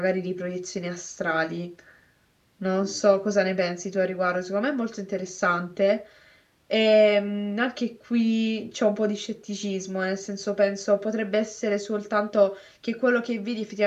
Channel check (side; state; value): both; identical; correlation 1.00